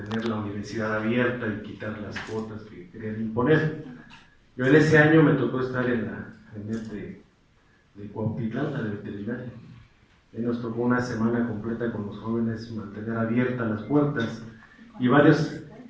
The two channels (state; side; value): identical; both; correlation 1.00